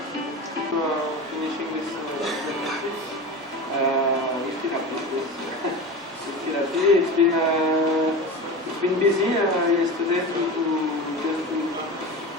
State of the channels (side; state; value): both; normal; correlation 0.28